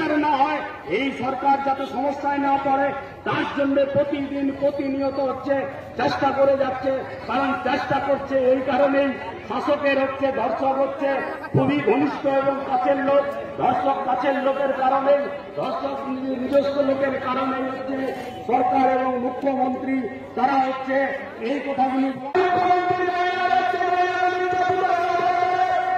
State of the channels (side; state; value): both; identical; correlation 1.00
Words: না হয়, এই সরকার যাতে সমস্যায় না পড়ে, তার জন্য প্রতিদিন প্রতিনিয়ত হচ্ছে চেষ্টা করে যাচ্ছে। কারণ চেষ্টা করছে এই কারণেই, শাসকের হচ্ছে ধর্ষক হচ্ছে খুবই ঘনিষ্ঠ এবং কাছের লোক, ধর্ষক কাছের লোকের কারণেই, ধর্ষক নিজস্ব লোকের কারণেই হচ্ছে সরকার এবং মুখ্যমন্ত্রী তারা হচ্ছে এই কথাগুলি